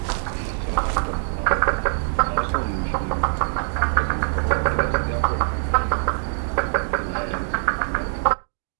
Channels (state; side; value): silent; left; digital silence